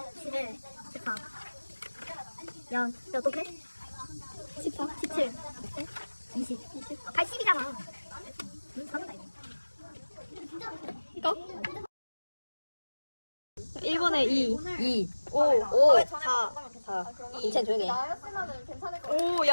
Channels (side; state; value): both; inverted; correlation -1.00